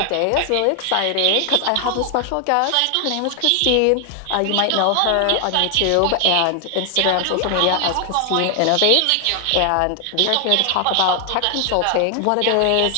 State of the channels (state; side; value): different; both; correlation 0.00